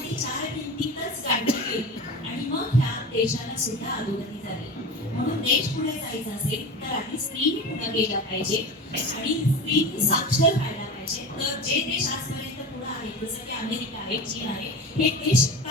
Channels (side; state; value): both; normal; correlation 0.30